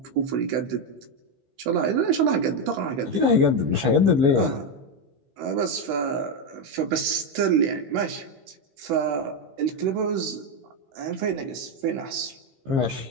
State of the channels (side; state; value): left; late; 16 ms